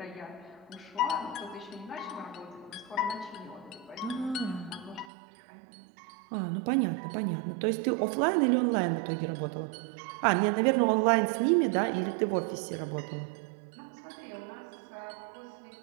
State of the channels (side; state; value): left; drops out; at 5.1 s